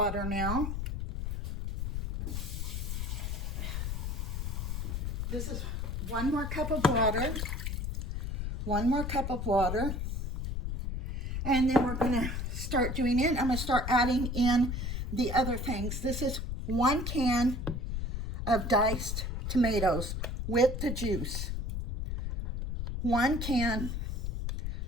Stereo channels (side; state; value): left; noise; rumble, 2 dB below the sound